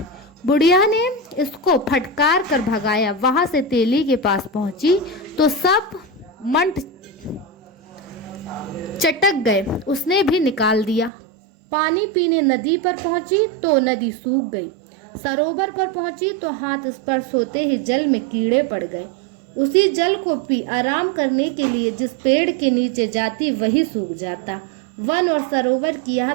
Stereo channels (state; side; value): drops out; left; at 11.1 s